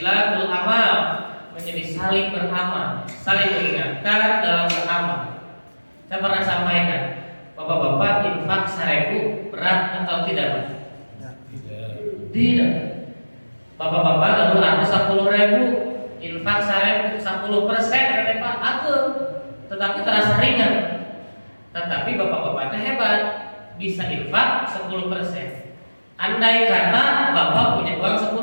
amal, menjadi saling beramal, saling mengingatkan dalam beramal. Saya pernah sampaikan, bapak-bapak infak 1.000 berat atau tidak Pak? Tidak. Bapak-bapak lalu ada 10.000 infak 10% kata Pak, aku tetapi terasa ringan. Tetapi bapak-bapaknya hebat. Bisa infak 10%. Andai kata Bapak punya uang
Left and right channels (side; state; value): both; inverted; correlation -1.00